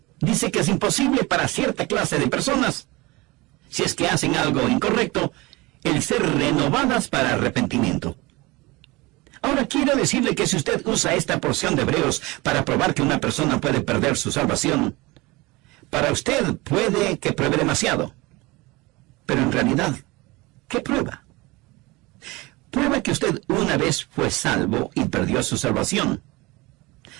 Dice que es imposible para cierta clase de personas, si es que hacen algo incorrecto, el ser renovadas para arrepentimiento. Ahora quiero decirle que si usted usa esta porción de Hebreos para probar que una persona puede perder su salvación, para usted puede que pruebe demasiado. Pero en realidad, ¿qué prueba? Prueba que usted una vez fue salvo y perdió su salvación.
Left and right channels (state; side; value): quieter; left; 22.9 dB